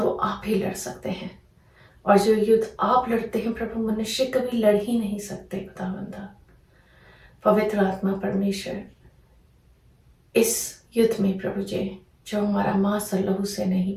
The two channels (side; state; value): both; identical; correlation 1.00